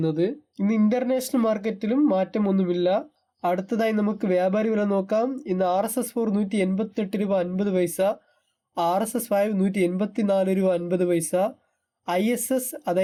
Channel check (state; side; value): identical; both; correlation 1.00